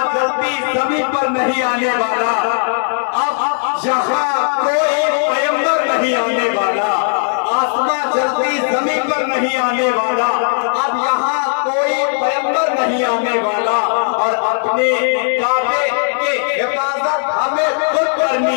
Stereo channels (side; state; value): right; silent; digital silence